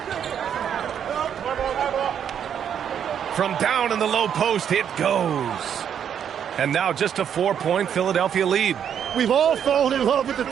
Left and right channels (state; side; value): quieter; left; 8.6 dB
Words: From down in the low post, it goes. And now just a 4-point Philadelphia lead. We've all fallen in love with the